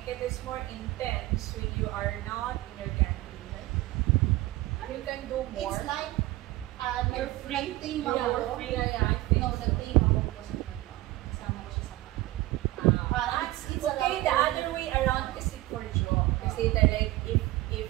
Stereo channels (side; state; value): left; quieter; 17.9 dB